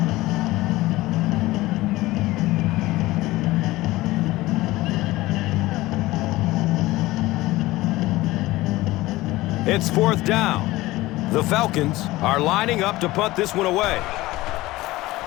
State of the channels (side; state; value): right; quieter; 18.5 dB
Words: It's 4th down. The Falcons are lining up to punt this one away.